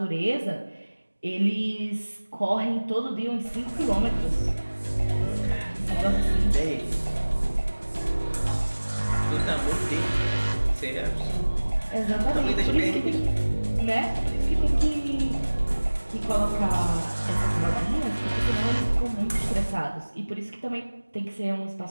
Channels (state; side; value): inverted; both; correlation -1.00